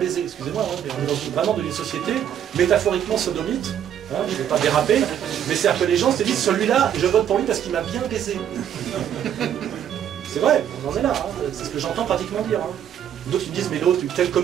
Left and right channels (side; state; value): left; quieter; 9.7 dB